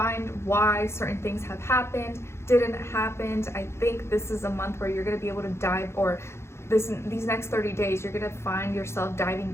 why certain things have happened, didn't happen. I think this is a month where you're going to be able to dive, or these next 30 days, you're going to find yourself diving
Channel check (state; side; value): late; right; 0.13 ms